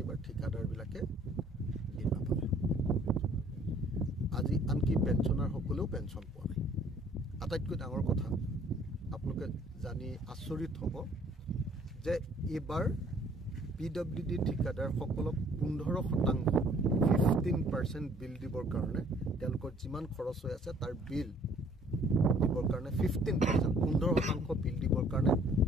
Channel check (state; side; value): normal; both; correlation 0.59